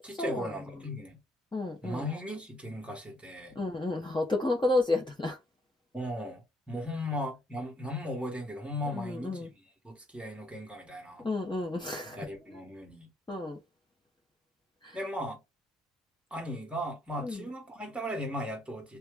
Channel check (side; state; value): both; normal; correlation 0.72